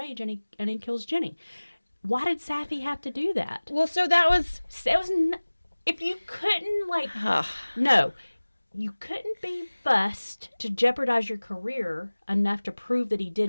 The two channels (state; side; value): inverted; both; correlation -1.00